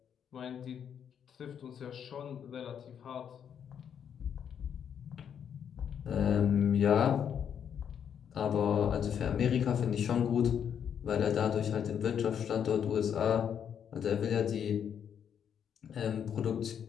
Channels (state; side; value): quieter; right; 8.3 dB